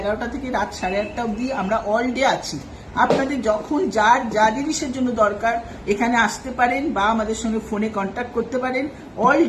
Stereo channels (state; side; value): identical; both; correlation 1.00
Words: থেকে রাত 8:30 অবধি আমরা অল ডে আছি। আপনাদের যখন যার যা জিনিসের জন্য দরকার এখানে আসতে পারেন বা আমাদের সঙ্গে ফোনে কন্ট্যাক্ট করতে পারেন। অল